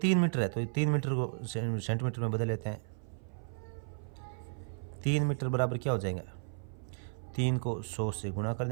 मीटर है, तो 3 मीटर को सेंटीमीटर में बदल लेते हैं। 3 मीटर बराबर क्या हो जाएगा? 3 को 100 से गुणा कर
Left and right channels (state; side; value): silent; left; 55 dB below the other